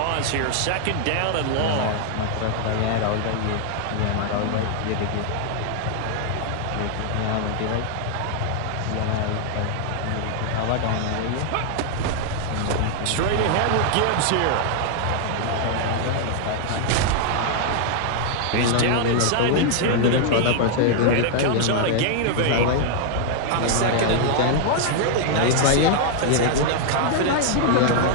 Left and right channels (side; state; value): both; different; correlation 0.00